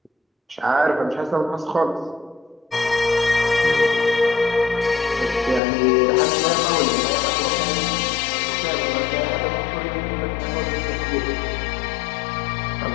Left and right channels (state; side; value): drops out; right; at 5.6 s